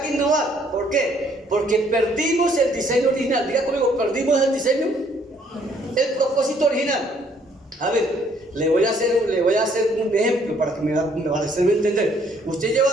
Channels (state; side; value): normal; both; correlation 0.64